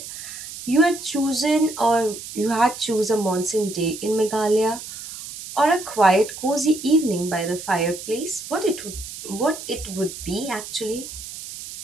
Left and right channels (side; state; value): right; noise; hiss, 11 dB below the sound